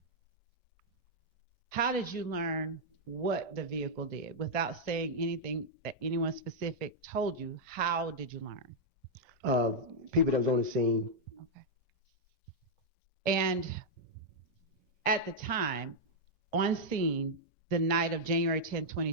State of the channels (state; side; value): normal; both; correlation -0.06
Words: How did you learn what the vehicle did? Without saying anything that anyone specific told you, how did you learn? People that was on the scene. Okay. And at the time, on scene, the night of January 10,